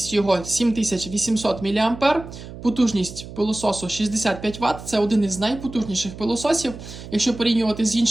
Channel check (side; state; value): right; noise; hum, 13 dB below the sound